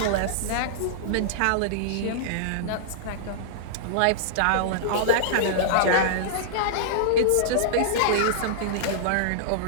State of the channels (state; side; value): different; both; correlation -0.02